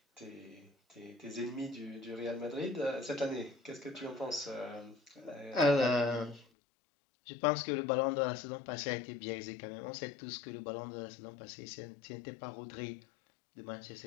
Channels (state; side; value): drops out; right; at 6.5 s